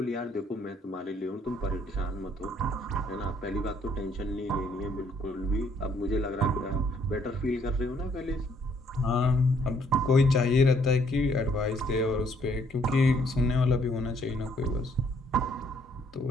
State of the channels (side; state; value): both; normal; correlation 0.66